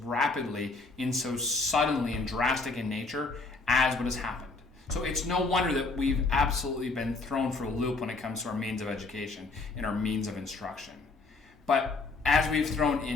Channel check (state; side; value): quieter; right; 3.7 dB